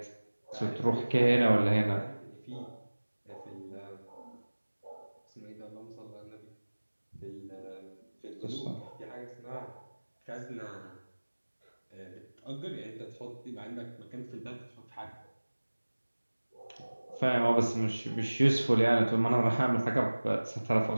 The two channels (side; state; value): both; inverted; correlation -1.00